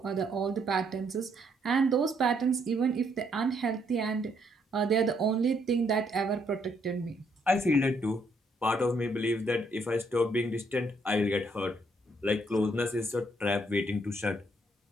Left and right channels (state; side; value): normal; both; correlation 0.71